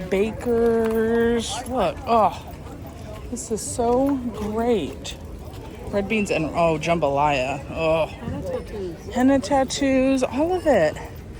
bakers. Look, oh, this is so great. Red beans and oh, jambalaya. Oh, henna tattoos, all of it.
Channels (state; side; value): identical; both; correlation 1.00